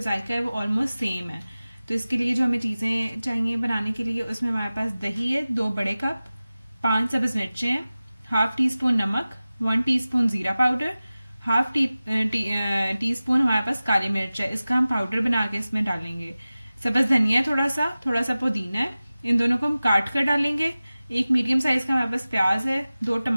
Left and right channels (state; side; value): inverted; both; correlation -0.97